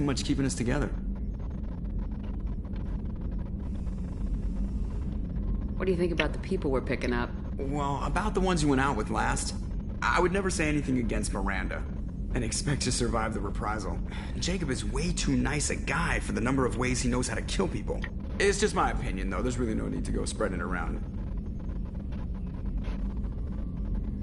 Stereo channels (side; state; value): both; identical; correlation 1.00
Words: much keeping us together. What do you think about the people we're picking up? Well, about the ones you went out with last, I would never say anything against Miranda and expect to survive the reprisal. Jacob is way too nice a guy for the number of ways he knows how to kill people. It's just my opinion, though. There's really no need to go spreading it around.